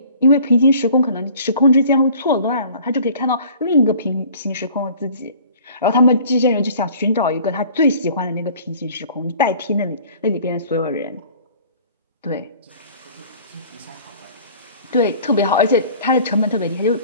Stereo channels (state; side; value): inverted; both; correlation -0.49